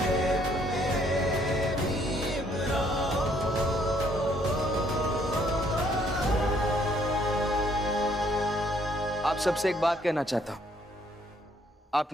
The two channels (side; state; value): both; normal; correlation 0.66